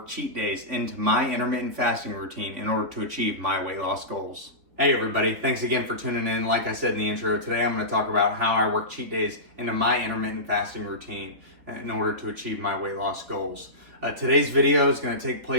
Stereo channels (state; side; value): late; left; 3.8 ms